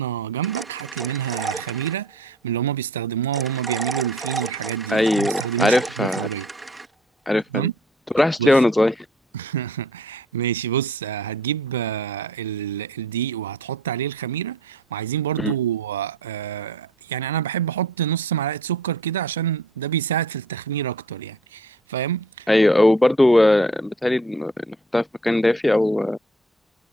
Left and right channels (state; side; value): normal; both; correlation 0.54